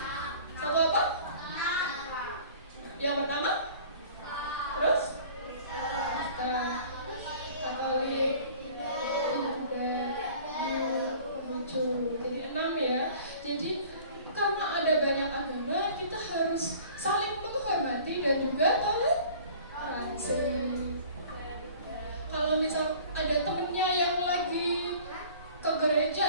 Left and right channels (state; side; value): inverted; both; correlation -0.48